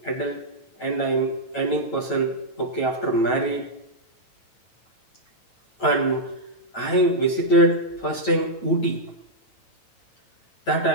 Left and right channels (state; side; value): late; right; 9.0 ms